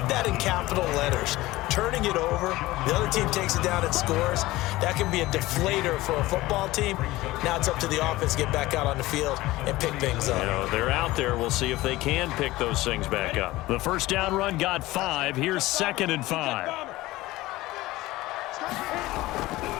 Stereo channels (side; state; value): right; quieter; 18.4 dB